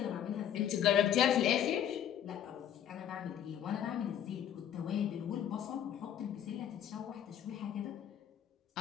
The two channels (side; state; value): right; quieter; 10.0 dB